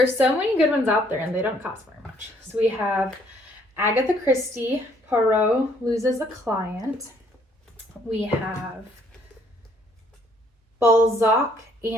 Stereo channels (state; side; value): normal; both; correlation 0.65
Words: so many good ones out there and they don't cost very much. So we have Agatha Christie, Poirot Loses a Client. We have Balzac